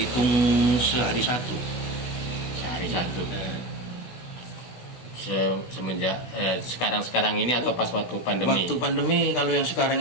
sehari satu. Sehari satu. Nah, Semenjak sekarang ini atau pas waktu pandemi? waktu pandemi, kalau yang sekarang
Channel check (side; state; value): right; late; 16 ms